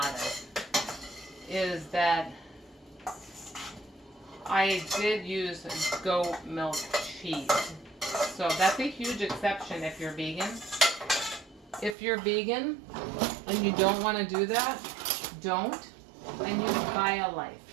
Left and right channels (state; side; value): drops out; left; at 12.0 s